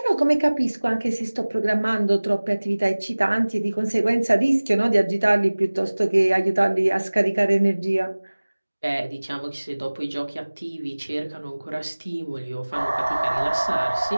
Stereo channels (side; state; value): both; inverted; correlation -1.00